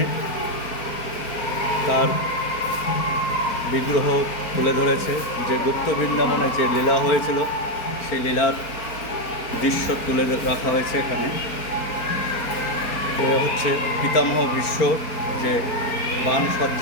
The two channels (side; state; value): right; late; 4.4 ms